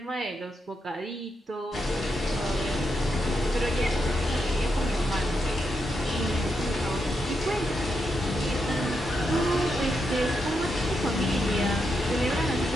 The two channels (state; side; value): normal; both; correlation 0.84